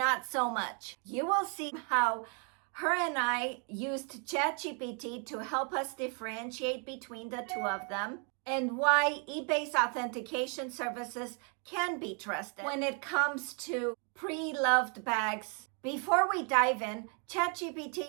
so much. You will see how her and I used ChatGPT to help us differentiate between the two of them, and why eBay's authentication services can be trusted when it comes to pre-loved bags. Before we dive in, ChatGPT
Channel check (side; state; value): left; quieter; 38.2 dB